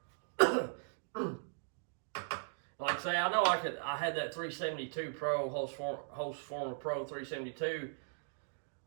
Like I say, I know I had that 372 Pro, Hose Former Pro 372,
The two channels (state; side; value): silent; left; digital silence